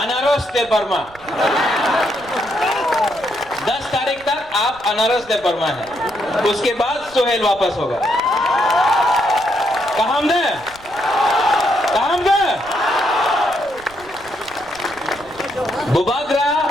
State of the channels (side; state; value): right; noise; rumble, 24 dB below the sound